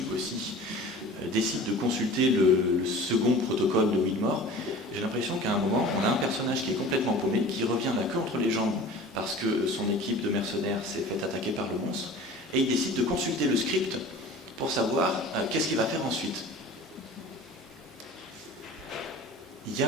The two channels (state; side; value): normal; both; correlation 0.40